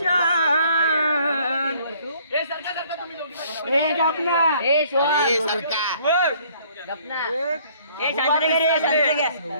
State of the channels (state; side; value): inverted; both; correlation -0.60